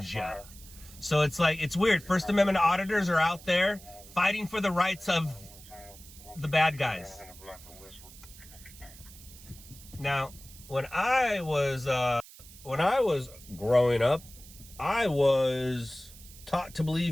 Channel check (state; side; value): noise; right; hiss, 19 dB below the sound